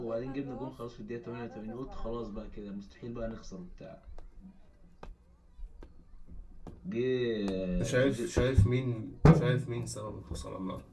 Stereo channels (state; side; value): identical; both; correlation 1.00